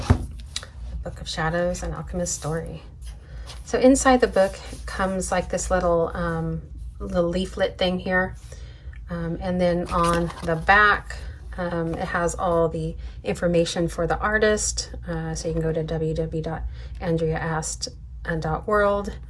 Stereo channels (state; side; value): identical; both; correlation 1.00